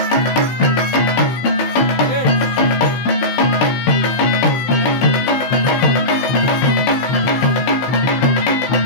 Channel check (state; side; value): late; right; 16 ms